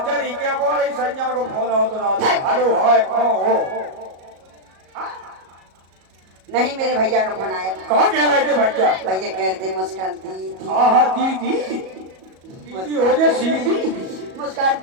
चलिए क्या बोल रही संजय को फोन आओ तो रात में। हेलो हाय कहाँ हो? नहीं मेरे भैया का फोन आया था। कहाँ कह रहे थे भैया? भैया कह रहे थे मुस्कान दीदी। हाँ दीदी हो जाए सीधी। मुस्कान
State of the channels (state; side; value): late; left; 37 ms